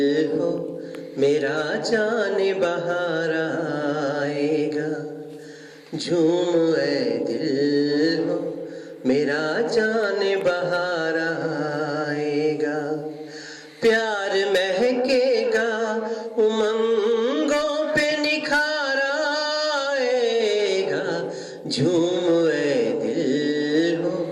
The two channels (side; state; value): both; identical; correlation 1.00